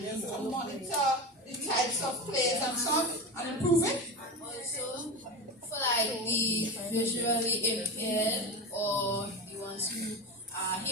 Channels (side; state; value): both; normal; correlation 0.23